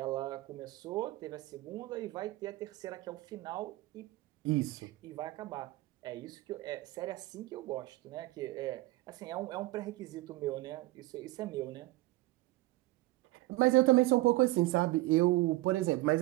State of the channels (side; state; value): left; quieter; 19.4 dB